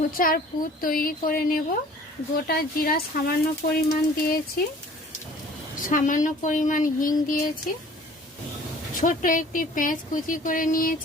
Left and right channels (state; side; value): normal; both; correlation 0.50